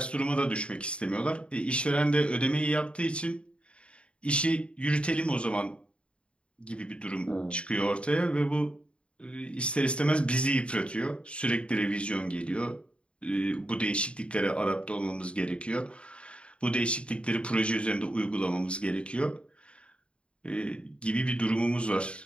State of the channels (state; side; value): late; right; 0.057 ms